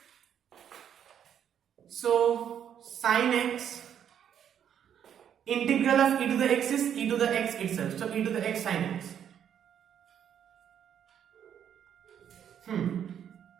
So sin x, integral of e to the x is e to the x itself. So e to the x sin x.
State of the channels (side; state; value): left; quieter; 9.1 dB